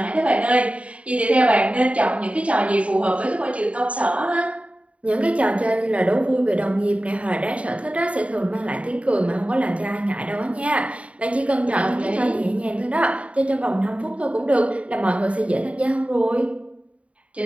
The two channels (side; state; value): left; late; 0.064 ms